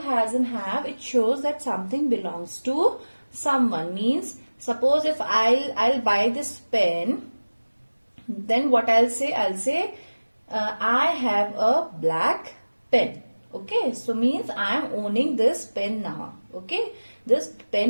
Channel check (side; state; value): both; inverted; correlation -1.00